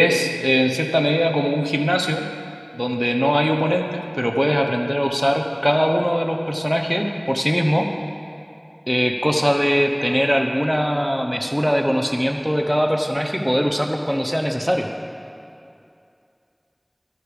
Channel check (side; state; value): both; identical; correlation 1.00